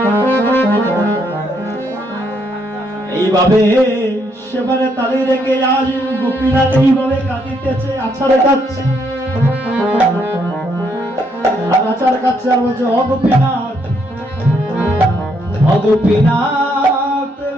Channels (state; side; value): normal; both; correlation 0.73